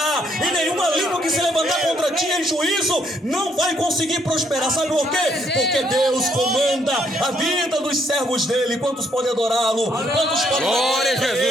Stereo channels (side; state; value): both; normal; correlation 0.70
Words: e nenhuma língua que se levantar contra ti em juízo não vai conseguir prosperar. Sabe por quê? Porque Deus comanda a vida dos servos dele. Quantos podem adorá-lo? Quantos podem glória a